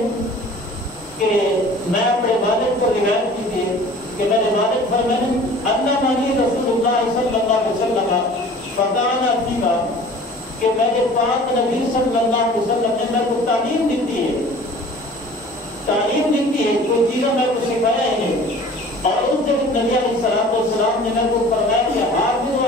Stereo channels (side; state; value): both; normal; correlation 0.45